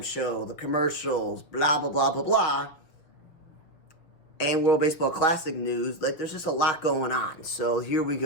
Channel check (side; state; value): right; late; 6.5 ms